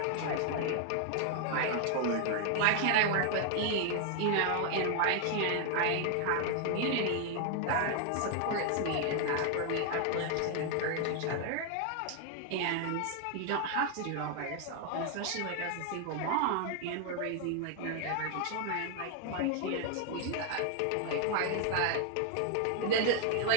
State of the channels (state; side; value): different; both; correlation 0.00